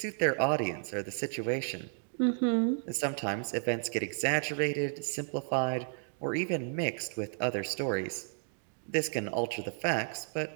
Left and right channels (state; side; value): silent; left; digital silence